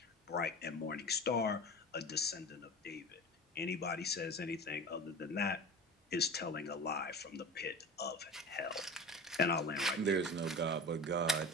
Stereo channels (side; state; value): both; normal; correlation 0.33